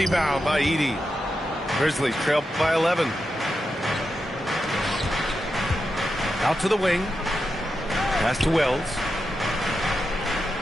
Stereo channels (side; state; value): both; normal; correlation 0.88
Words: by Edey. Grizzlies trail by 11. Out to the wing. Pass to Wells.